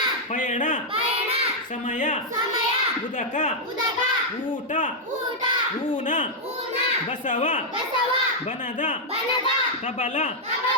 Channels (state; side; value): normal; both; correlation -0.04